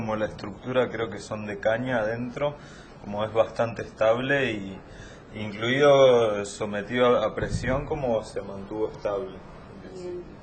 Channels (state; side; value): identical; both; correlation 1.00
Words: la estructura creo que son de caña adentro, como es bastante estable y incluido sometido a presión, como se mantuvo estable.